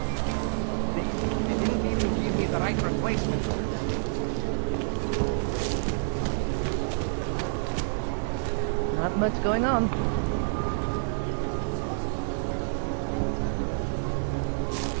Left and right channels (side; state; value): left; silent; digital silence